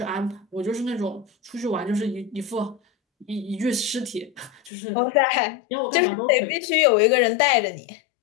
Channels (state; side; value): drops out; right; at 4.7 s